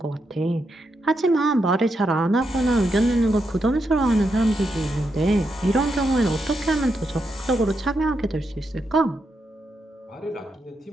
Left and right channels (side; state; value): both; normal; correlation 0.83